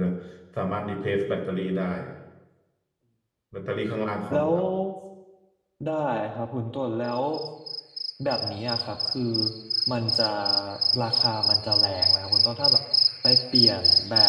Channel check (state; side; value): identical; both; correlation 1.00